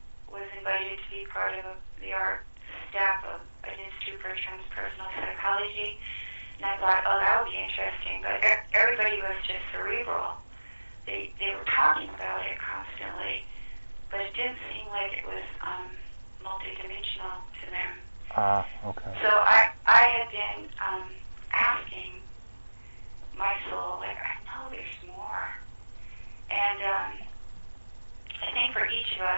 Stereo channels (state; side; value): inverted; both; correlation -1.00